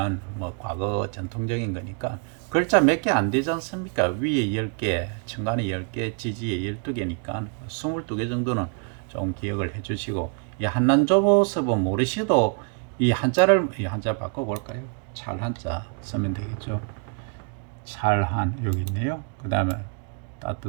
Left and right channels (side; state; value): left; quieter; 37.3 dB